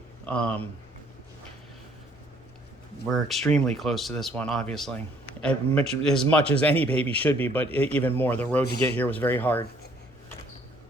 we're extremely close to this one, obviously. As much as any baby should be, but even more. The road to get here was very hard.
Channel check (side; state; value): both; normal; correlation 0.62